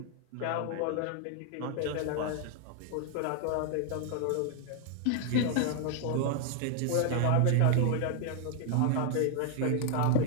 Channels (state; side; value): different; both; correlation 0.00